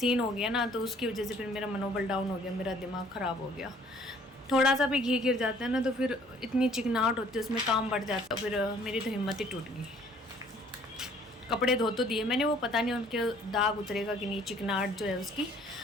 हो गया ना, तो उसकी वजह से फिर मेरा मनोबल डाउन हो गया, मेरा दिमाग ख़राब हो गया। थोड़ा सा भी घी गिर जाता है ना तो फिर इतनी चिकनाहट होती है, उसमें काम बढ़ जाता है, फिर मेरी तो हिम्मत ही टूट गई। कपड़े धो तो दिए मैंने, वो पता नहीं उनके दाग उतरेगा कि नहीं, चिकनाहट जो है उसकी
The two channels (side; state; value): both; normal; correlation 0.58